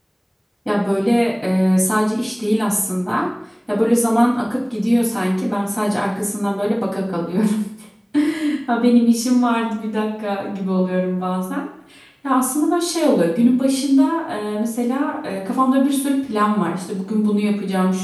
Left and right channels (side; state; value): both; identical; correlation 1.00